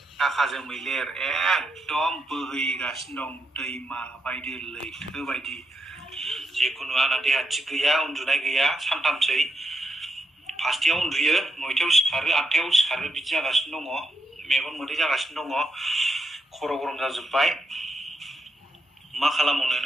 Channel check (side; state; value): both; normal; correlation 0.82